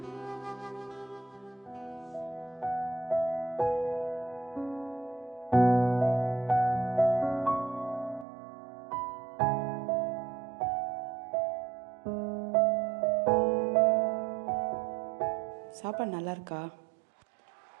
சாப்பாடு நல்லா இருக்கா?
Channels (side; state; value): left; drops out; at 8.2 s